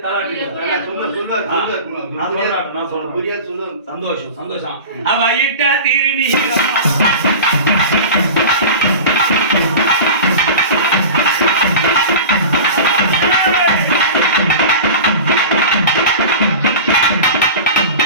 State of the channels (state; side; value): inverted; both; correlation -0.32